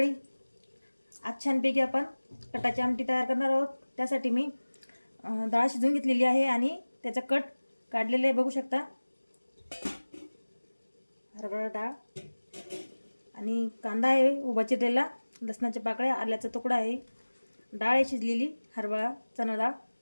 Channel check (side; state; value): both; inverted; correlation -1.00